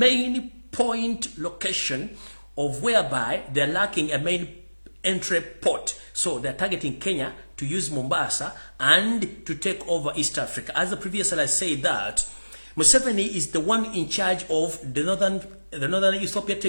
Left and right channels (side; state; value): both; inverted; correlation -1.00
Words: point location of whereby they're lacking a main entry port. So they're targeting Kenya to use Mombasa and to take over East Africa. As the previous I said that Museveni is the one in charge of the northern Ethiopia